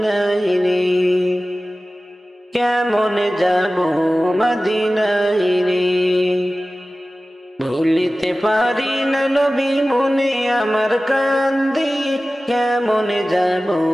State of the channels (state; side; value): normal; both; correlation 0.96